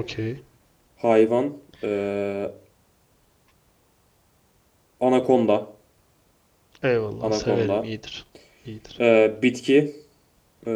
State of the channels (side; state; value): both; identical; correlation 1.00